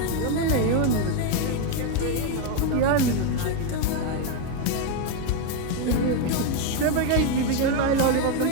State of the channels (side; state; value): both; different; correlation 0.02